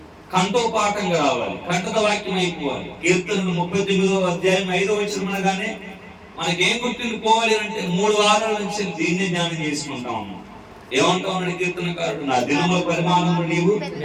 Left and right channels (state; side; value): identical; both; correlation 1.00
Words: కంఠోపాఠంగా రావాలి, కంఠద వాక్యం అయిపోవాలి. కీర్తనలు 39వ అధ్యాయం 5వ వచనం అనగానే మనకేం గుర్తుండిపోవాలి అంటే 3 వారాల నుంచి దీన్నే ధ్యానం చేసుకుంటా ఉన్నాం. ఏమంటా ఉన్నాడు కీర్తనకారుడు, నా దినముల పరిమాణము నీవు